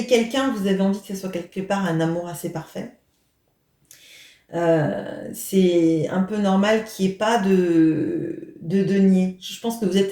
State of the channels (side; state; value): both; identical; correlation 1.00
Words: quelqu'un, vous avez envie que ce soit quelque part un amour assez parfait. C'est un peu normal qu'il n'y ait pas de denier. Je pense que vous